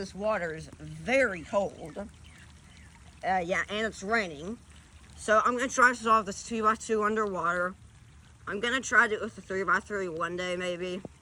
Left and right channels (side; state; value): both; identical; correlation 1.00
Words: water is very cold. Yeah, and it's raining. So I'm going to try to solve this 2x2 underwater. I'm going to try to do it with the 3x3 one day maybe.